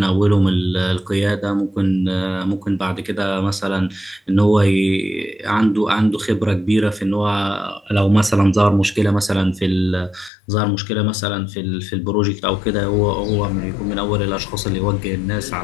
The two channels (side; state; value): right; drops out; at 10.3 s